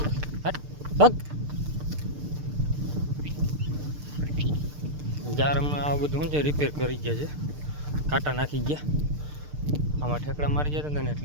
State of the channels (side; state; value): left; late; 6.7 ms